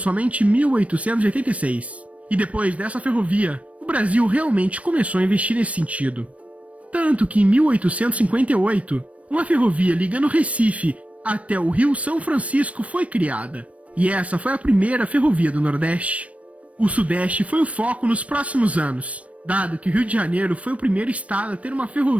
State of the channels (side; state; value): left; late; 0.065 ms